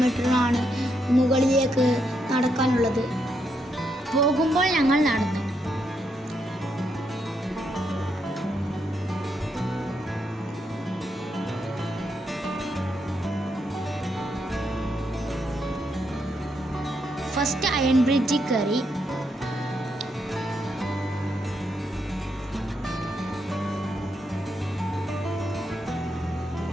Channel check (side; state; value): both; normal; correlation 0.79